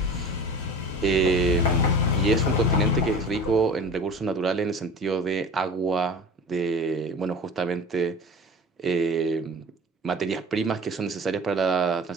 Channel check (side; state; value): both; normal; correlation 0.38